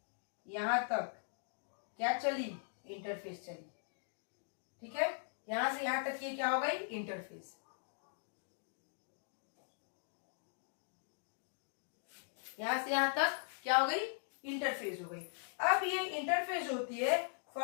यहां तक क्या चली? इंटरफेज चली. ठीक है, यहां से यहां तक ये क्या हो गई? इंटरफेज. यहां से यहां तक क्या हो गई? इंटरफेज हो गई. अब ये इंटरफेज होती है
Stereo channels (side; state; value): right; silent; digital silence